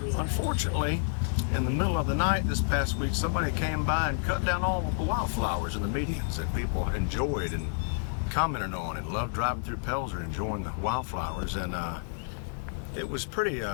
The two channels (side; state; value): right; silent; 58 dB below the other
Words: unfortunately, in the middle of the night this past week, somebody came by and cut down all of the wildflowers in the medians that people enjoyed and commented on and loved driving through Pelzer enjoying the wildflowers. And it was pretty